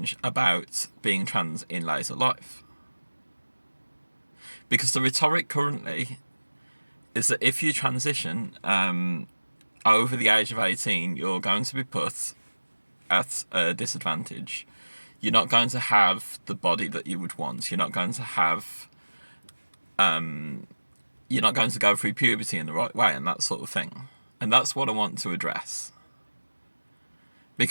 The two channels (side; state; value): both; inverted; correlation -1.00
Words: about being trans in later life. Because the rhetoric currently is that if you transition over the age of 18, you're going to be put at a disadvantage. You're not going to have the body that you would want. You're not going to have... you're not going to go through puberty in the right way and that sort of thing. And that's what I want to address.